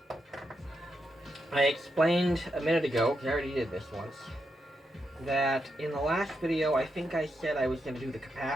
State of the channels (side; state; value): both; normal; correlation 0.84